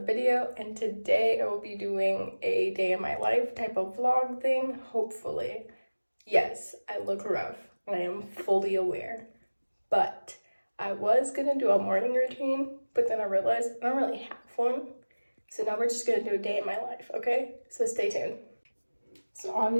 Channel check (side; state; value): both; inverted; correlation -1.00